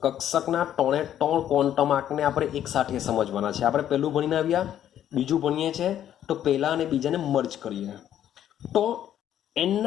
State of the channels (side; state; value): right; quieter; 10.8 dB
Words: કક્ષકના 3 ક્વોન્ટમ આંકને આપણે એક સાથે સમજવાના છે. આપણે પહેલું ભણીને આવ્યા, બીજું ભણીએ છીએ, તો પહેલા અને બીજાને મર્જ કરીએ. તો n